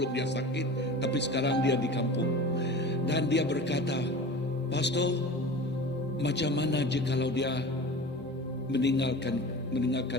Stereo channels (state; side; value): normal; both; correlation 0.36